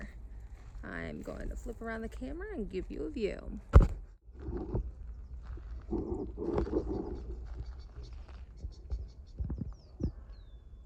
I'm going to flip around the camera and give you a view.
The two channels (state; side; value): identical; both; correlation 1.00